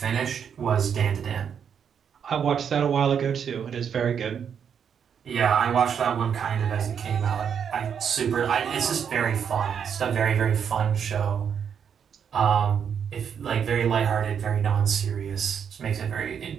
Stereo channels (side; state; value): left; quieter; 7.6 dB